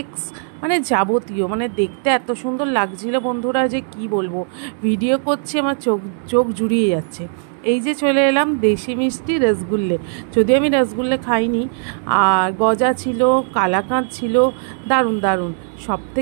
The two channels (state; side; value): silent; left; 66 dB below the other